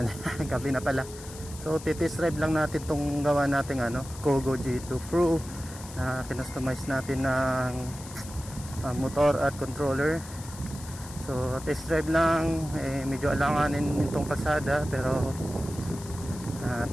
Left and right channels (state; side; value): noise; left; hiss, 16 dB below the sound